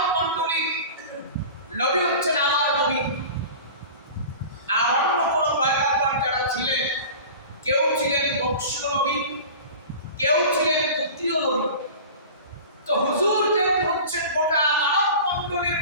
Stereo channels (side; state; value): both; inverted; correlation -0.37